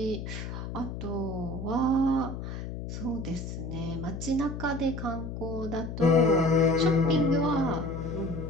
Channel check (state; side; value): noise; left; hum, 7 dB below the sound